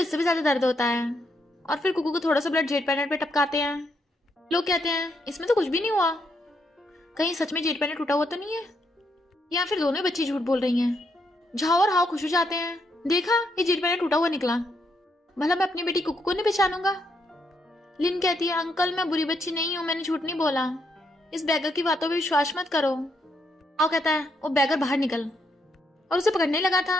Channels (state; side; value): normal; both; correlation 0.77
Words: इससे भी ज्यादा दर्द होता है। और फिर कुकू को थोड़ा सा ब्लड जेट पेंडेंट पे टपकाते हैं। लोग कहते हैं इसमें तो कुछ भी नहीं हुआ, कहीं सच में जेट पेंडेंट टूटा हुआ तो नहीं है, या फिर दोनों बच्ची झूठ बोल रही हैं। झाओ और हाओ खुश हो जाते हैं, देखा ये जेट पेंडेंट टूटा हुआ निकला, भला मैं अपनी बेटी कुकू को नहीं पहचानूंगा। लिन कहती है अंकल मैं बुरी बच्ची नहीं हूँ, मैंने झूठ नहीं बोला, इस बैगर की बातों पे विश्वास मत करो। हाउ कहता है वो बैगर बाहर निकल, और उसे पकड़ने लगा